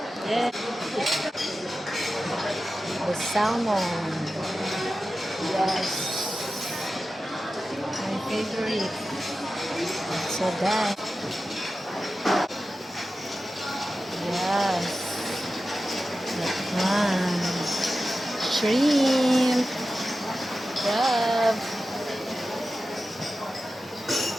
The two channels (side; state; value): both; normal; correlation 0.93